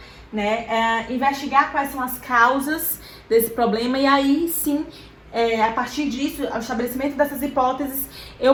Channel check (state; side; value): identical; both; correlation 1.00